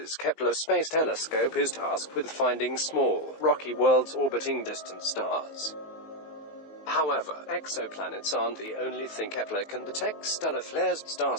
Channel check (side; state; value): right; late; 19 ms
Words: Kepler Space Telescope is tasked with finding small, rocky worlds orbiting distant stars. However, exoplanets aren't the only thing Kepler can detect. Stellar flares, star